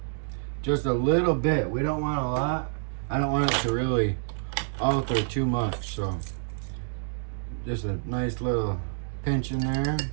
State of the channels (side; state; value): left; silent; digital silence